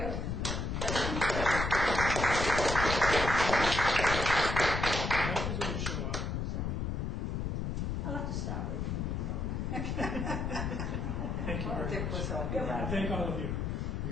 Doctors will show up. So I'll have to start waiting for a moment. Thank you very Dick much. was up. You're I welcome. thank all of you.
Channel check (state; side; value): noise; left; rumble, 1 dB below the sound